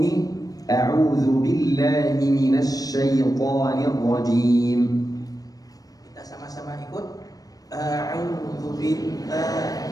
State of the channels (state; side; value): late; right; 0.18 ms